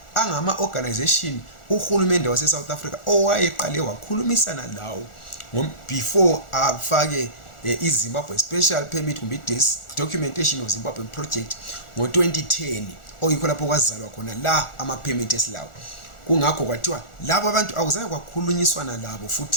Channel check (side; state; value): right; late; 1.4 ms